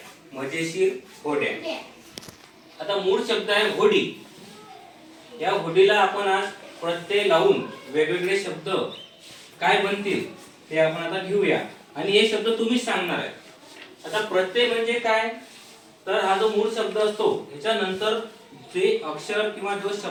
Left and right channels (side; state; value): both; identical; correlation 1.00